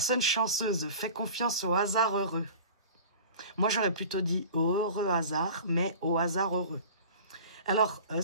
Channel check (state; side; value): inverted; both; correlation -0.40